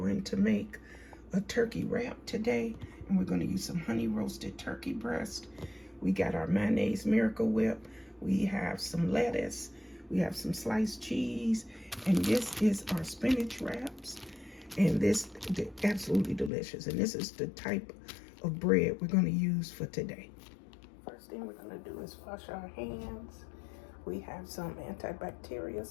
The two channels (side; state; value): right; drops out; at 16.5 s